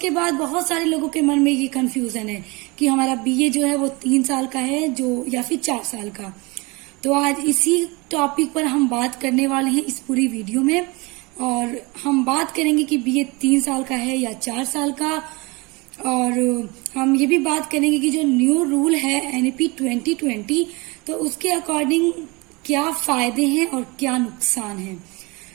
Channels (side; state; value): left; quieter; 26.1 dB